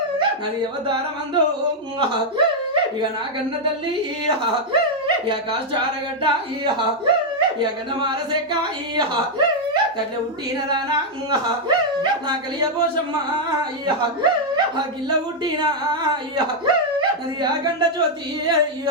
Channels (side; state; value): both; normal; correlation -0.01